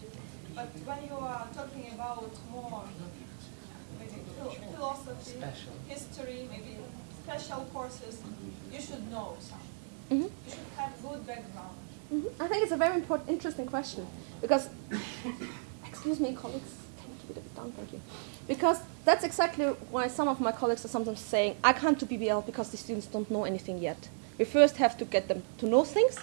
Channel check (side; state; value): left; silent; digital silence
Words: But when you are special courses, you should know something. Mhm. You should have good background. I think it's a very interesting question because, excuse me, colleagues, can you keep it a bit down? Thank you. Because that's exactly why some of my colleagues are sometimes saying, I can't do BBL because the students don't know anything yet. We first have to get them to know things,